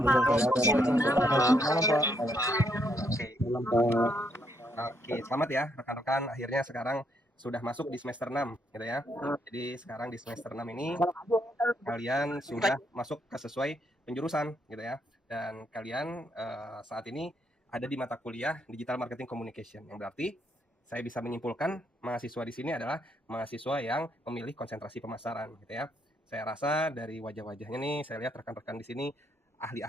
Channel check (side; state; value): both; normal; correlation 0.74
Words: Pak. Malam, Pak. Oke, Malam, Pak. oke, selamat ya rekan-rekan. Akhirnya sekarang sudah masuk di semester 6, gitu ya. Jadi sekarang di semester 6 ini kalian sudah masuk ke sesuai penjurusan, gitu ya. Dan kalian saat ini ada di mata kuliah Digital Marketing Communication, yang berarti saya bisa menyimpulkan mahasiswa di sini adalah mahasiswa yang memilih konsentrasi pemasaran, gitu ya. Saya rasa dari wajah-wajahnya nih, saya lihat rekan-rekan di sini